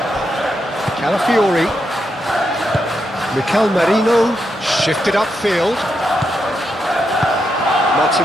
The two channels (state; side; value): normal; both; correlation 0.83